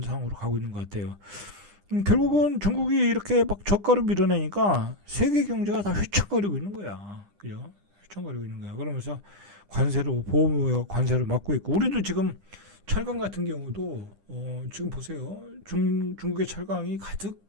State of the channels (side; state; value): left; late; 9.9 ms